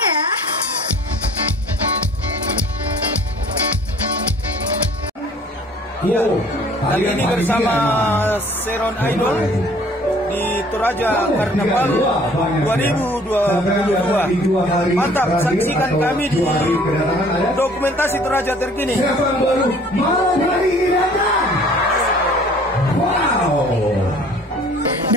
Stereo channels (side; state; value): both; normal; correlation 0.53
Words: ya. Iya, kali ini bersama Seron Idol di Toraja Karnaval 2022. Mantap, saksikan kami di dokumentasi Toraja terkini.